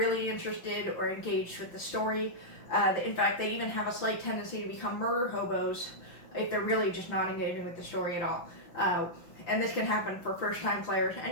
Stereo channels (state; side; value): late; right; 5.9 ms